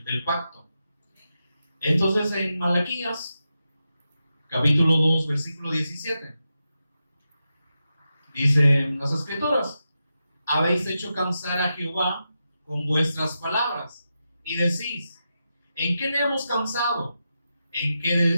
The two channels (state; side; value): inverted; both; correlation -0.89